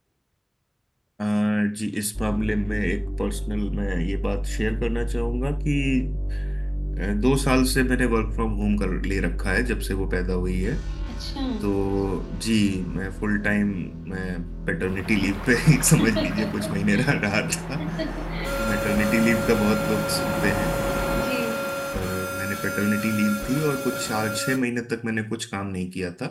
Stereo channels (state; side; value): identical; both; correlation 1.00